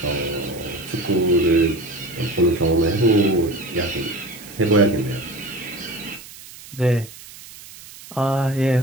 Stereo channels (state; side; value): noise; right; hiss, 18 dB below the sound